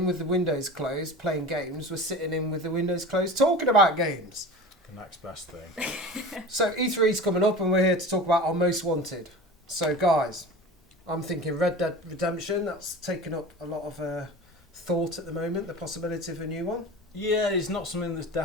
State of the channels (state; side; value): normal; both; correlation 0.34